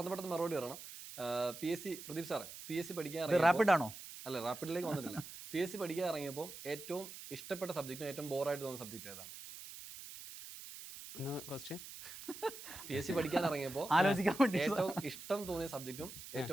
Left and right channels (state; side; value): noise; right; hiss, 12 dB below the sound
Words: മറുപടി പറയണം. PSC പ്രദീപ് സാറേ, PSC പഠിക്കാൻ റാപ്പിഡ് ആണോ? അല്ല, റാപ്പിഡിലേക്ക് വന്നിട്ടില്ല. PSC പഠിക്കാൻ ഇറങ്ങിയപ്പോൾ ഏറ്റവും ഇഷ്ടപ്പെട്ട സബ്ജക്റ്റും ഏറ്റവും ബോറായിട്ട് തോന്നുന്ന സബ്ജക്റ്റ് ഏതാണ്? PSC പഠിക്കാൻ ഇറങ്ങിയപ്പോൾ ആലോചിക്കാൻ വേണ്ടി ഏറ്റവും ഇഷ്ടം തോന്നിയ സബ്ജക്റ്റും